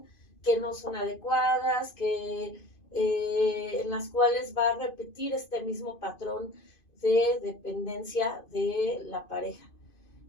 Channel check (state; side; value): late; right; 2.5 ms